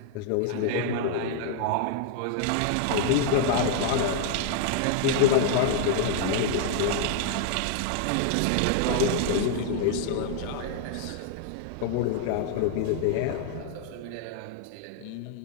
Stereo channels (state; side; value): different; both; correlation 0.00